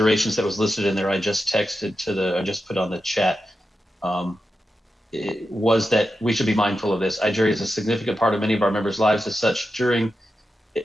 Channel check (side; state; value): both; normal; correlation 0.89